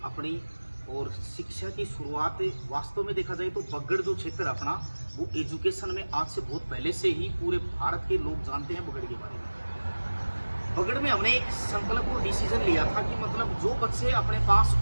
अपनी और शिक्षा की शुरुआत वास्तव में देखा जाए तो बगड़ जो क्षेत्र अपना वो एजुकेशन में आज से बहुत पहले से ही पूरे भारत के लोग जानते हैं बगड़ के बारे में। बगड़ में हमने एक संकल्प और डिसीजन लिया था कि मतलब जो बच्चे अपने पास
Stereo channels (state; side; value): inverted; both; correlation -1.00